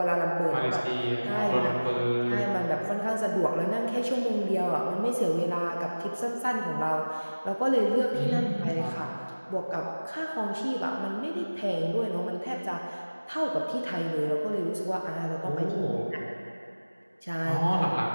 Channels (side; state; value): both; inverted; correlation -1.00